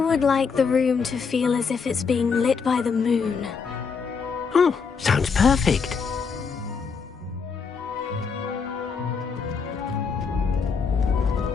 like the room to feel as if it's being lit by the moon. Oh, sounds perfect.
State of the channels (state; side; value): quieter; right; 5.5 dB